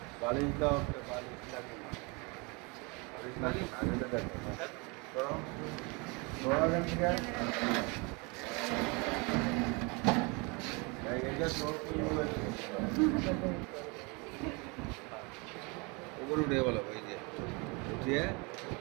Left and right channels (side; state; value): left; quieter; 29.5 dB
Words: বালিশ দাও বালিশ লাগবে না বালিশ লাগবে না এটা দেখো করো উপরে উঠে বলো ওই যে উঠিয়ে